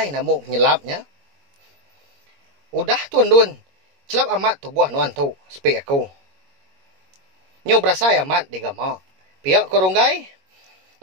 namuk nyelapnya. Udah tu andun. Celap amat tubuh nuan tu. Sepi aku. Nyo berasa amat digama. Pihak korunggai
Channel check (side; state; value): left; late; 21 ms